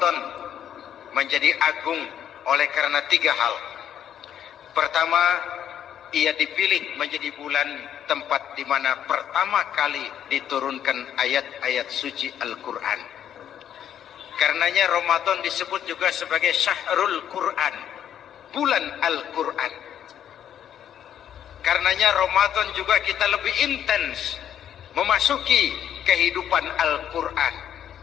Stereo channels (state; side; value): quieter; right; 9.8 dB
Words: menjadi agung oleh karena 3 hal. Pertama, ia dipilih menjadi bulan tempat di mana pertama kali diturunkan ayat-ayat suci Al-Quran. Karenanya Ramadan disebut juga sebagai Syahrul Quran, bulan Al-Quran. Karenanya Ramadan juga kita lebih intens memasuki kehidupan Al-Quran